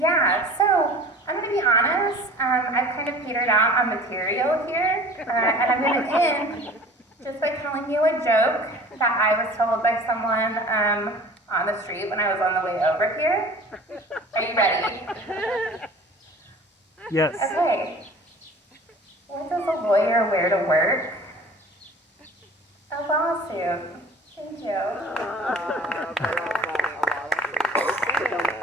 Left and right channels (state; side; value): normal; both; correlation 0.44